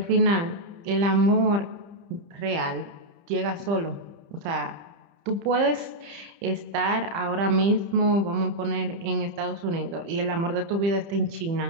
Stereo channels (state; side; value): late; left; 30 ms